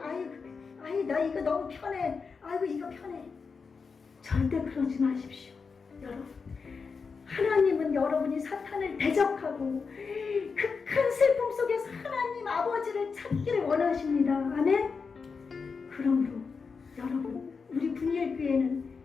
나 이거 너무 편해. 아이고, 이거 편해. 절대 그러지 마십시오. 여러분, 하나님은 여러분이 사탄을 대적하고 극한 슬픔 속에서 하나님 아버지를 찾기를 원하십니다. 아멘? 그러므로 여러분, 우리 분일교회는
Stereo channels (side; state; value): right; quieter; 5.1 dB